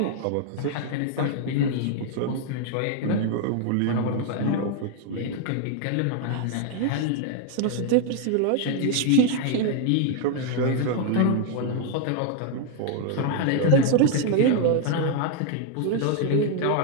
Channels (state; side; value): different; both; correlation 0.00